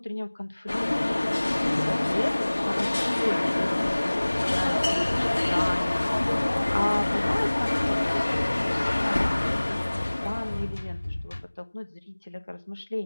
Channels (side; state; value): both; inverted; correlation -1.00